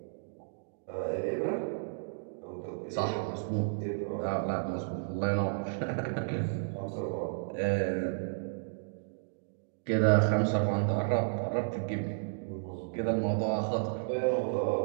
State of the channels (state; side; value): silent; left; digital silence